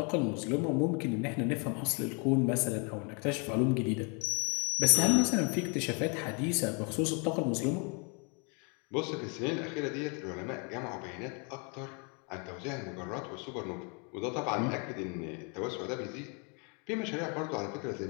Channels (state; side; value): quieter; right; 35.2 dB